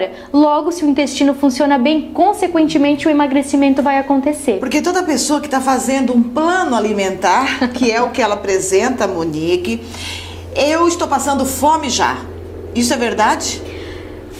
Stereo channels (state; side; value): identical; both; correlation 1.00